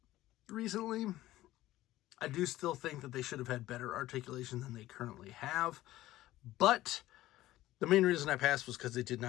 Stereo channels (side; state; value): right; quieter; 15.7 dB